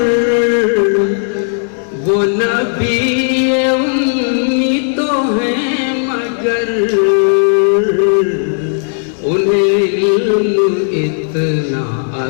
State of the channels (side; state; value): right; silent; digital silence